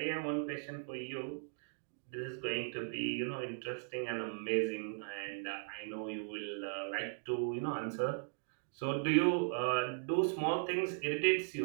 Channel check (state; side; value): silent; left; digital silence